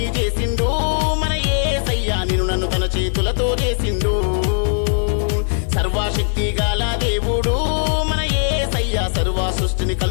చేసిండు మన యేసయ్య, నిన్ను నన్ను తన చేతులతో చేసిండు. సర్వశక్తి గల దేవుడు మన యేసయ్య సర్వ సృష్టిని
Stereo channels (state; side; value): silent; right; digital silence